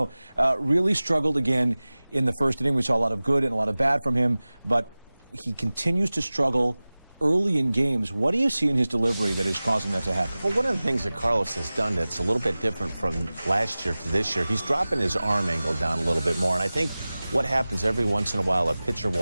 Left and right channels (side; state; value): both; inverted; correlation -0.98